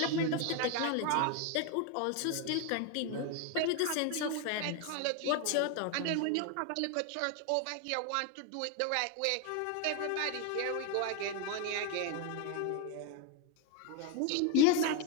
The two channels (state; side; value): different; both; correlation 0.01